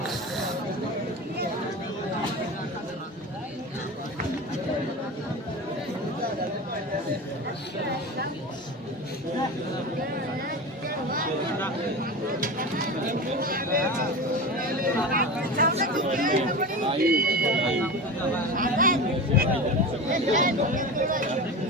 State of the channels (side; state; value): both; normal; correlation 0.27